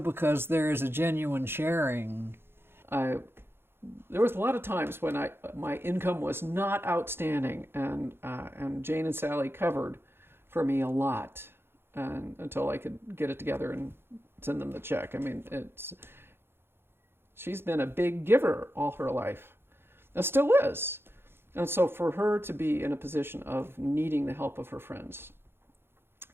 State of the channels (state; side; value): late; left; 0.11 ms